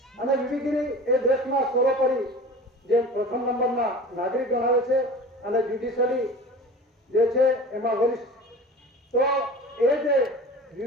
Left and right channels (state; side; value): normal; both; correlation 0.38